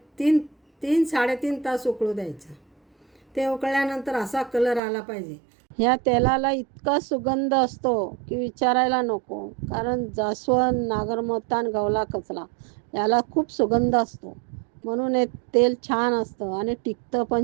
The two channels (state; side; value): drops out; left; at 4.8 s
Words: 3-3.5 तास उकळू द्यायचं. ते उकळल्यानंतर असा कलर आला पाहिजे. ह्या तेलाला इतका सुगंध असतो की विचारायला नको, कारण जास्वंद, नागरमोथा आणि गवला कचरा याला खूप सुगंध असतो, म्हणून हे तेल छान असतं आणि टिकतं पण